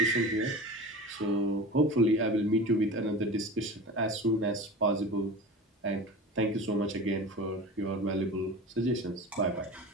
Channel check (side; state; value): both; normal; correlation 0.33